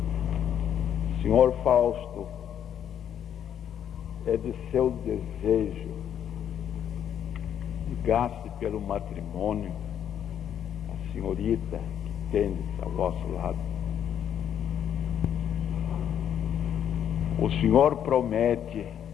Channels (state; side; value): quieter; right; 9.4 dB